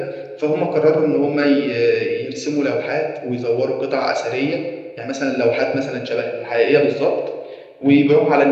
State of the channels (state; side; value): identical; both; correlation 1.00